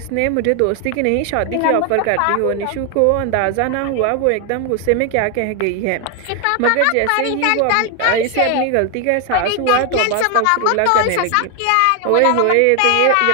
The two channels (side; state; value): both; different; correlation 0.01